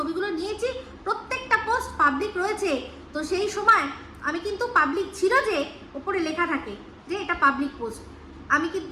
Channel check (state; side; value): identical; both; correlation 1.00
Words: নিয়েছি, প্রত্যেকটা পোস্ট পাবলিক রয়েছে। তো সেই সময় আমি কিন্তু পাবলিক ছিল যে ওপরে লেখা থাকে যে এটা পাবলিক পোস্ট, আমি কিন্তু